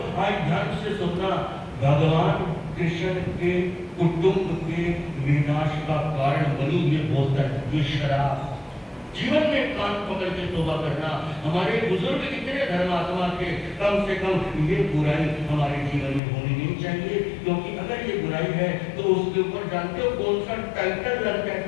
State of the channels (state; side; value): drops out; right; at 16.2 s